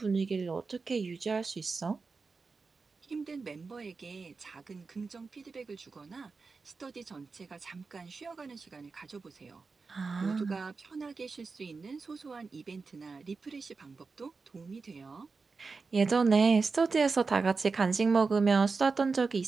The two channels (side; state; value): left; quieter; 4.4 dB